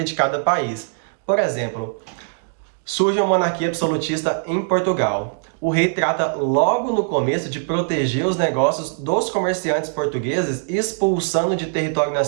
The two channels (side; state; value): left; silent; digital silence